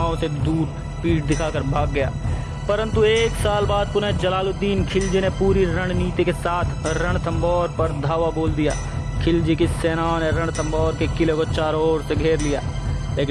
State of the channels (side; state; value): both; identical; correlation 1.00